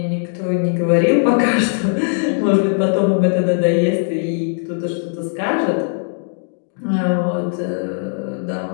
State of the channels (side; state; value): right; silent; digital silence